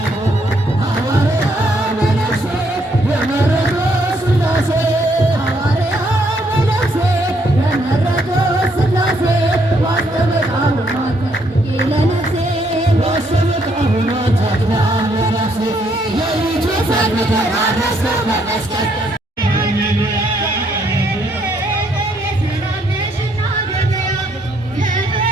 ሐዋርያ መነኩሴ የመረጦ ሥላሴ ሐዋርያ መነኩሴ የመረጦ ሥላሴ ዋስተበቃሉ ለነፍሴ ዋስተበቃሉ ተድላ ለነፍሴ የይቱ ፈርተራረሰ በመስቀል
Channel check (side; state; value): both; normal; correlation 0.71